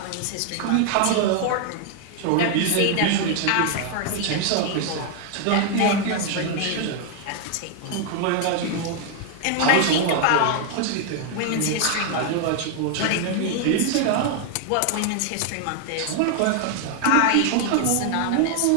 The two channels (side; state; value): both; different; correlation 0.00